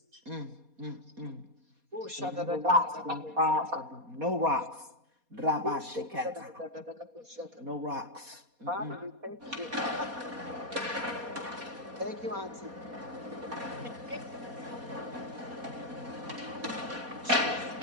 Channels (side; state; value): left; late; 4.2 ms